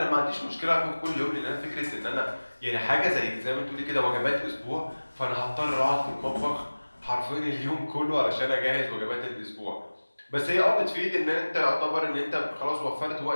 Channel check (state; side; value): inverted; both; correlation -1.00